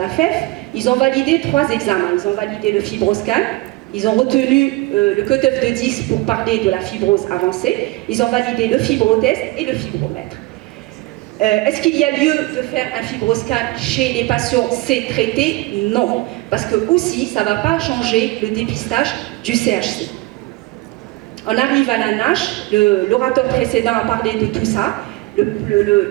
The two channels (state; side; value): quieter; left; 20.6 dB